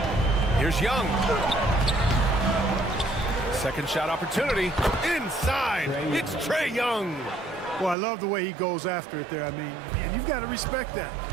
Here's Young. Second shot opportunity. Inside. It's Trae Young. Well, I love the way he goes after it there. I mean, and you've got to respect that.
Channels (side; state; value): left; drops out; at 8.0 s